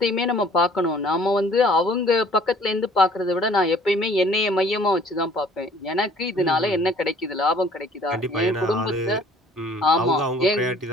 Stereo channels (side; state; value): both; normal; correlation 0.54